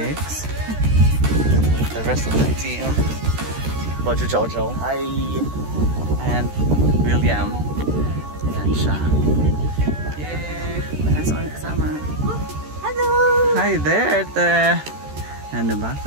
the rest of the team, Bojo Jojo, hi, and William. Ayan siya. Yay! May aso kami kasama. Hello! Hi there, Ate! Ano ba?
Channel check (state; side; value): late; left; 13 ms